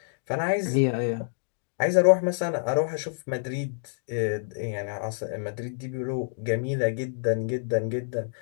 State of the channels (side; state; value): right; silent; 60 dB below the other